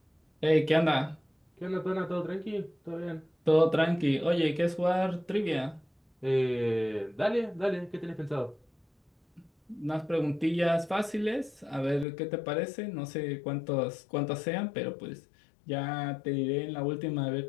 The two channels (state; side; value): drops out; right; at 12.1 s